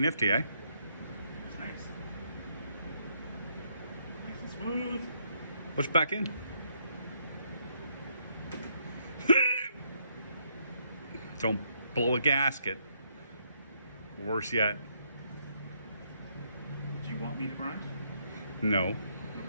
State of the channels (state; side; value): inverted; both; correlation -0.74